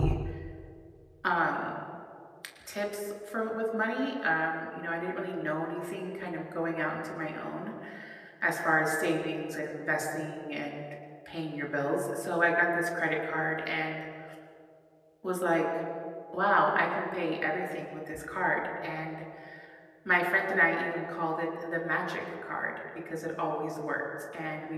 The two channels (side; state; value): both; identical; correlation 1.00